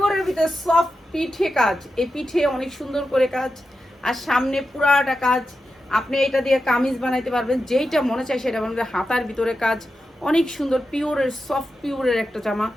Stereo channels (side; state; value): both; normal; correlation 0.90